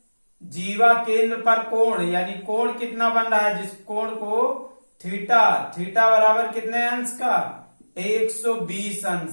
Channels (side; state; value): both; inverted; correlation -1.00